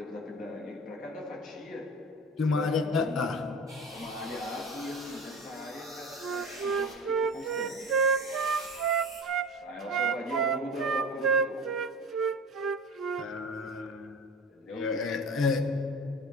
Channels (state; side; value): normal; both; correlation 0.33